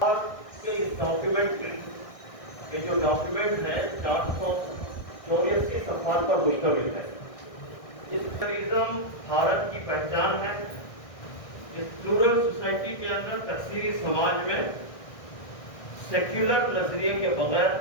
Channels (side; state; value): right; late; 1.6 ms